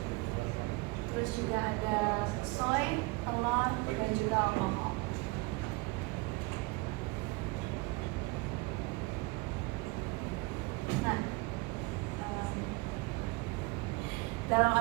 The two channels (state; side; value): quieter; left; 24.7 dB